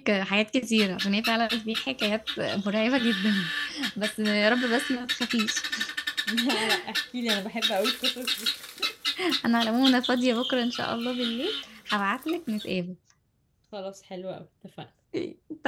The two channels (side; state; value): both; identical; correlation 1.00